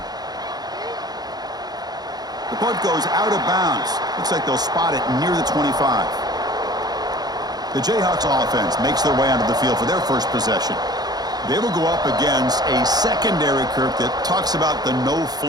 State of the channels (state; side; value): late; left; 0.19 ms